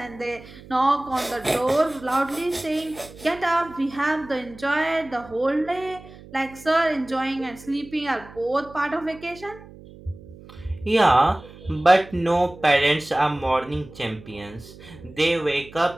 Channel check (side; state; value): right; noise; hum, 19 dB below the sound